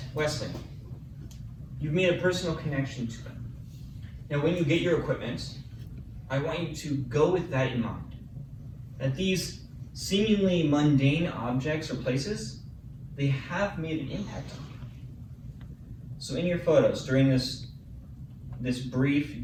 Wesleyan. You've made a personal connection to them. Now when you get your equipment, I want you to go with that in mind. That these seemingly mundane objects or places, they have made an impact on you. So in your photos, during this brief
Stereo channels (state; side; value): identical; both; correlation 1.00